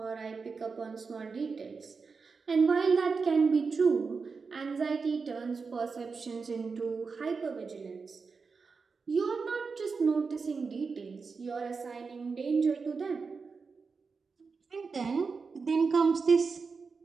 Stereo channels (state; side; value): quieter; left; 4.9 dB